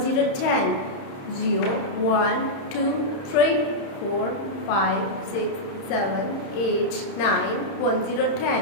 0, 10. 0, 1, 2, 3, 4, 5, 6, 7, 8, 9, 1, 0,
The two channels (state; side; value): late; right; 31 ms